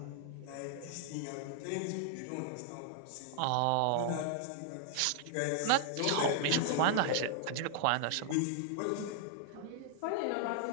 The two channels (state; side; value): different; both; correlation -0.01